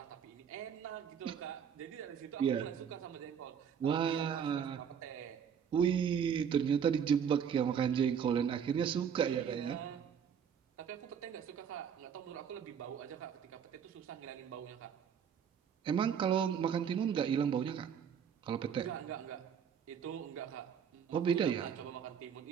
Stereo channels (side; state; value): left; quieter; 7.8 dB